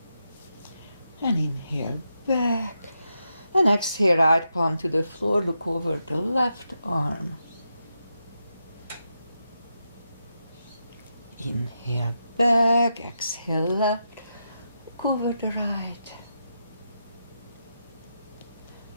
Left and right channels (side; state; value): both; inverted; correlation -0.85